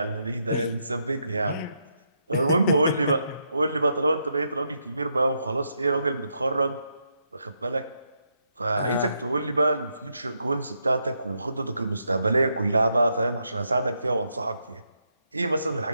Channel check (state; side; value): inverted; both; correlation -0.80